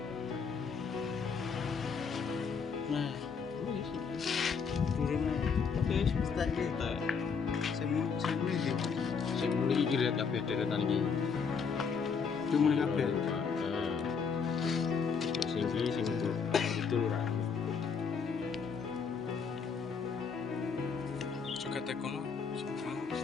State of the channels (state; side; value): quieter; right; 5.8 dB